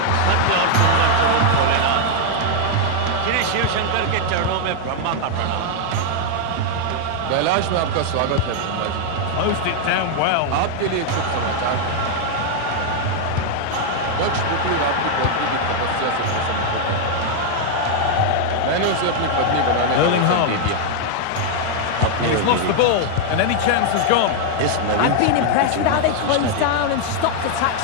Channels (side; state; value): both; different; correlation 0.00